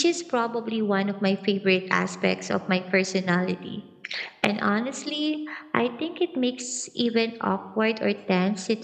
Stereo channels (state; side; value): identical; both; correlation 1.00